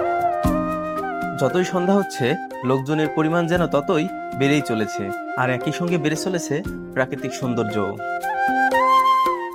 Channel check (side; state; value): both; identical; correlation 1.00